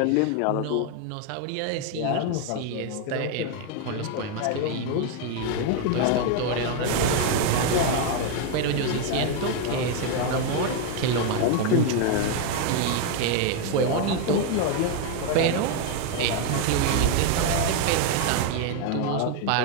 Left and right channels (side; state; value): both; different; correlation 0.01